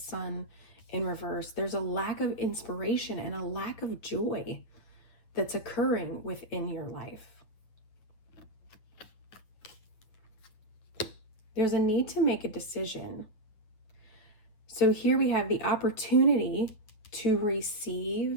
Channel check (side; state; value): right; late; 9.1 ms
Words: in reverse. There's a lack of inspiration and a lack of joy that's occurring within your life. There's a need to make a decision. So here we have the opportunity to